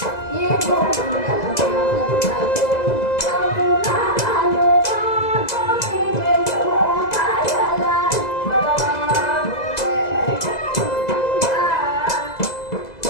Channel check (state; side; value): late; right; 2.0 ms